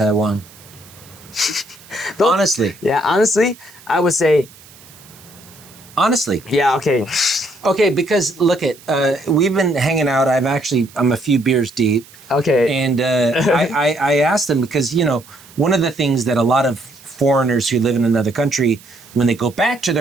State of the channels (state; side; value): noise; right; hiss, 23 dB below the sound